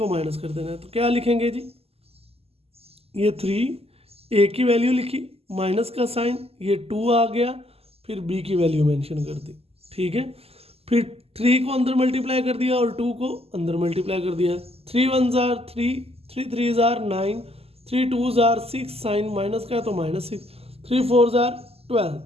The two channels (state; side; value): late; left; 0.29 ms